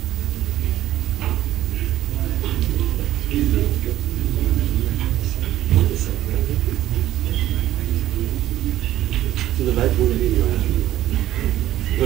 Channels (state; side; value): quieter; left; 13.8 dB